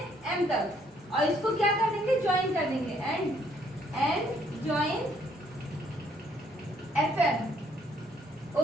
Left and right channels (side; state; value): both; normal; correlation 0.67